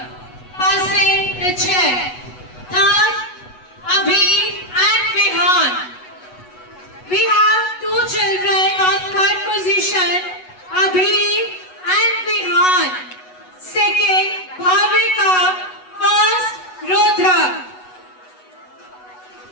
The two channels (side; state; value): right; late; 8.1 ms